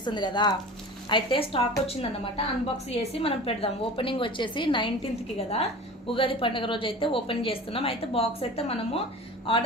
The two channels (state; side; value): normal; both; correlation 0.37